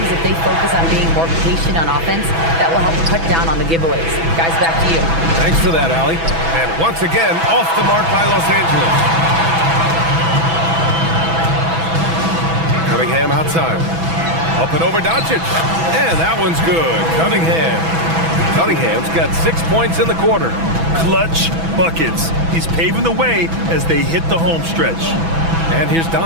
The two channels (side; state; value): left; late; 6.1 ms